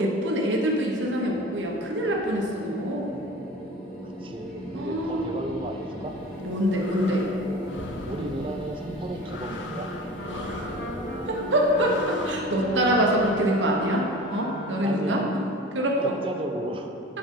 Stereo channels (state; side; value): normal; both; correlation 0.37